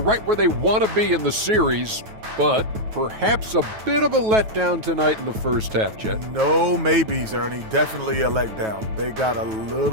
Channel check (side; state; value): left; late; 9.3 ms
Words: where they want to be in the series, but perhaps a bit of a letdown tonight in the first half, Jet. No maybes, Ernie. Definitely a letdown. They got a